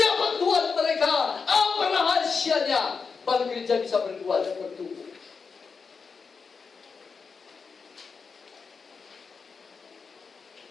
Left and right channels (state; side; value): quieter; right; 5.2 dB